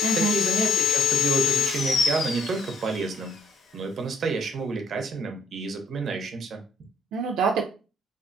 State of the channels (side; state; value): both; normal; correlation 0.60